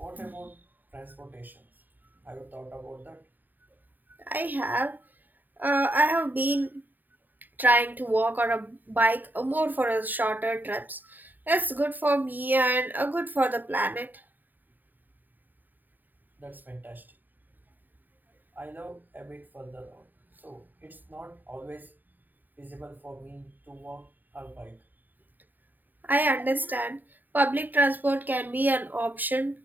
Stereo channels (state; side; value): late; left; 0.088 ms